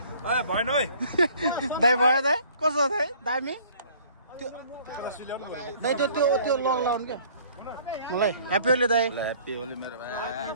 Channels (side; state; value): both; inverted; correlation -0.55